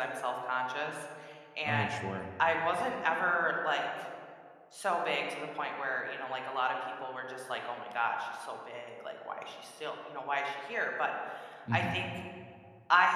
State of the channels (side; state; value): both; identical; correlation 1.00